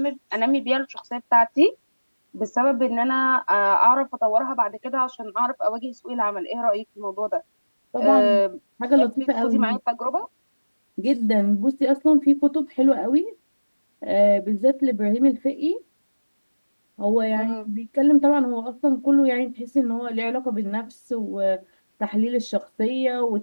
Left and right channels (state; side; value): inverted; both; correlation -1.00